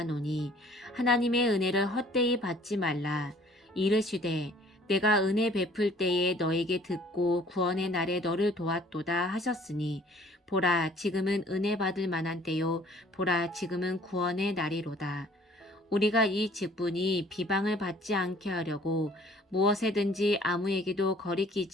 하나님의 은혜를 헛되이 받지 말라. 이르시되 내가 은혜 베풀 때에 너에게 듣고 구원의 날에 너를 도왔도다 하셨으니 보라 지금은 은혜 받을 만한 때요 보라 지금은 구원의 날이로다. 우리가 이 직분이 비방을 받지 않게 하려고 무엇에든지 아무에게도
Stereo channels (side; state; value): both; normal; correlation 0.55